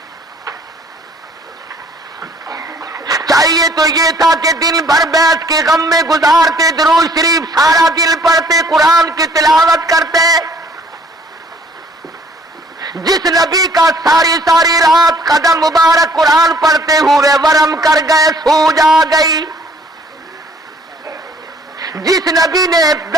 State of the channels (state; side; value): normal; both; correlation 0.58